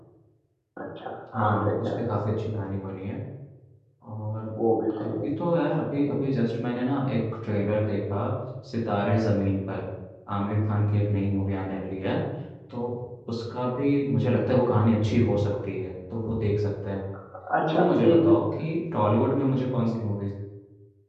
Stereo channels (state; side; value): identical; both; correlation 1.00